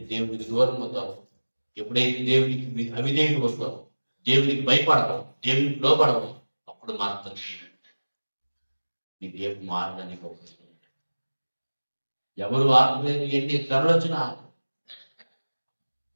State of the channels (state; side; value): inverted; both; correlation -1.00